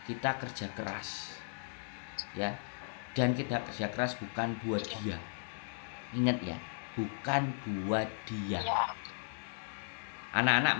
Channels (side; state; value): right; silent; digital silence